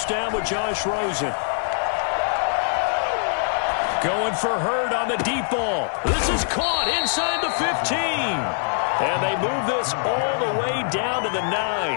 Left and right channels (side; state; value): right; silent; 63 dB below the other